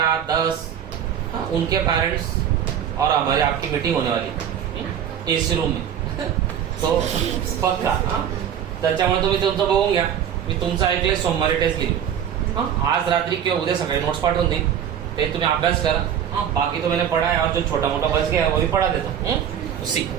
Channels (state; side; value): quieter; left; 9.2 dB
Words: 10 उनके पेरेंट्स और हमारी आपकी मीटिंग होने वाली एसी रूम में. तो पक्का त्याच्यामुळे तुम्ही तुमचं बघून घ्या. मी तुमचं ऐकलंय सोमवारी टेस्ट घेईल. आज रात्री किंवा उद्या सकाळी नोट्स पाठवून देईन, ते तुम्ही अभ्यास करा. बाकी तो मैंने पढ़ा है और जो छोटा मोटा बच गया है वो भी पढ़ा देता हूँ उसी.